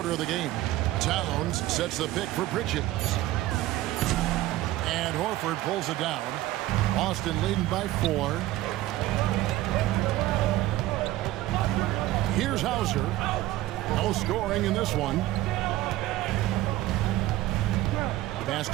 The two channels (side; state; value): left; quieter; 15.9 dB